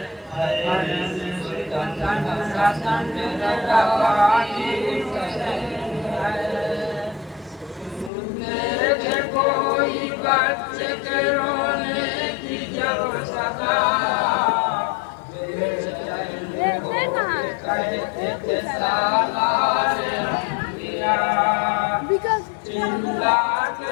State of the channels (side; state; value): right; drops out; at 8.1 s